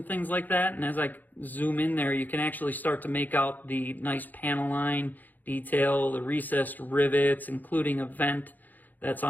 things like that. And as I zoom in there, you can actually start to make out the nice panel line detail, the recessed rivets, including a vent that's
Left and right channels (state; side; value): late; right; 0.085 ms